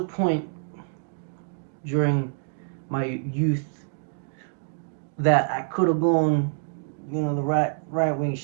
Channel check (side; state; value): left; silent; digital silence